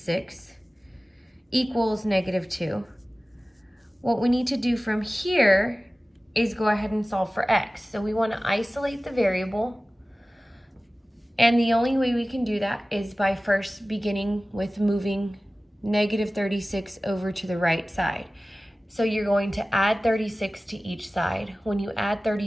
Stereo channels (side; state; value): both; normal; correlation 0.97